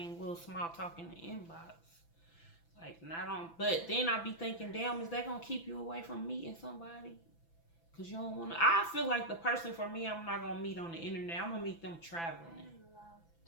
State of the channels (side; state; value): right; late; 6.0 ms